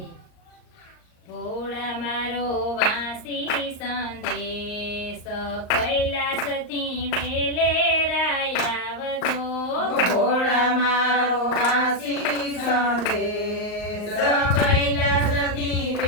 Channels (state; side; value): late; right; 38 ms